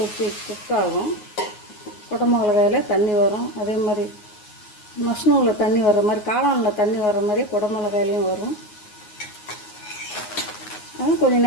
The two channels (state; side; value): late; right; 9.5 ms